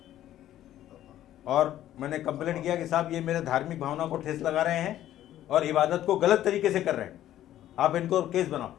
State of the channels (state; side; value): quieter; right; 12.6 dB